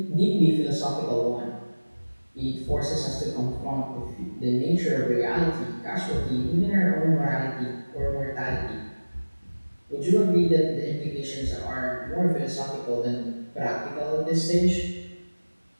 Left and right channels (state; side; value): inverted; both; correlation -1.00